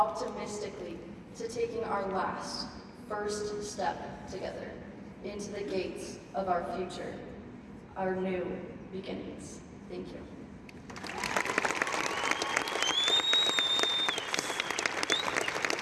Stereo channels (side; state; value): both; identical; correlation 1.00